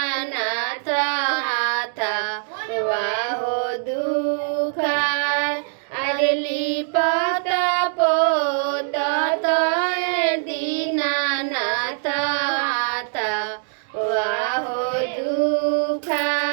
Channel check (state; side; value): silent; left; digital silence